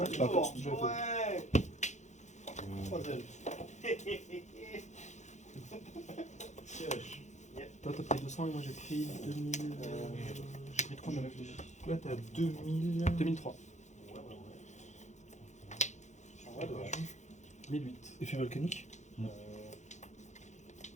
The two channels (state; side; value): late; right; 0.34 ms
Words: pas à cause. Toi, t'as pris 200 et moi j'ai pris 2000. J'ai pris 3000. Là, t'as 2000. 2003. 1008. Effet volcanique.